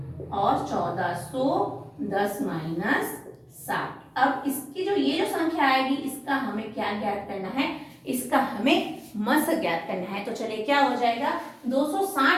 और 1410 माइनस 7। अब इसकी ये जो संख्या आएगी इसका हमें क्या ज्ञात करना है? इसका हमें मस ज्ञात करना है। तो चलिए क्या हो जाएगा?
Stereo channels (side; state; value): both; identical; correlation 1.00